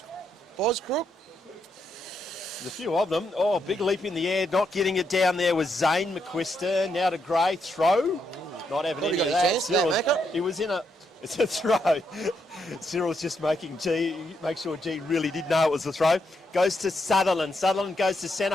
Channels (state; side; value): normal; both; correlation 0.79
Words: Boz Crook. There's a few of them. Oh, big leap in the air. Not getting it down there was Zane McQuiston. Now to Gray. Throw. Not having any of that. Cyril's, he was in a... It's a throw. Cyril's just make sure G really did know it was a throw. Goes to Sutherland. Sutherland goes to centre